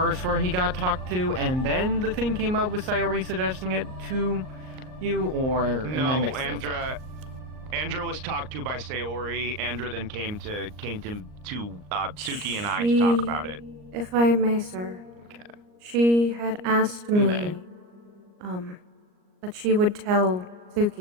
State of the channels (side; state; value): left; late; 38 ms